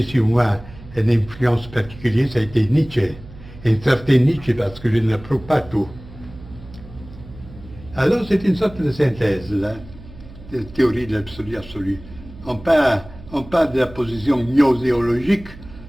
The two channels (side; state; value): right; noise; hum, 18 dB below the sound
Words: sur moi une influence particulière, ça a été Nietzsche. Un certain Nietzsche, parce que je ne l'approuve pas tout. Alors c'est une sorte de synthèse, là, de théorie de l'absolu absolu. On parle de la position gnoséologique,